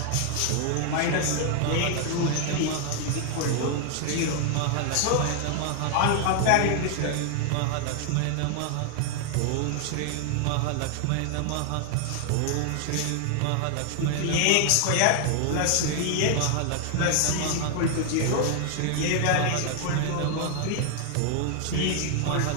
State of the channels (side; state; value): both; different; correlation 0.00